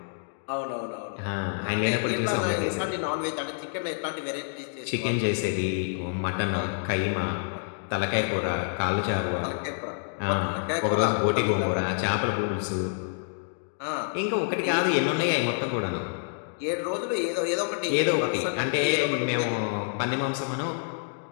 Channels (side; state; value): right; silent; digital silence